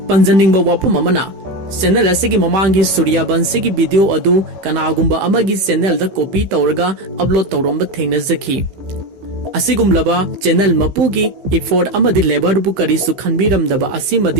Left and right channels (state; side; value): late; left; 15 ms